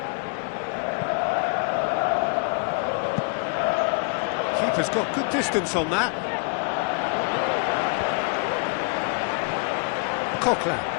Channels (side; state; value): right; quieter; 37.2 dB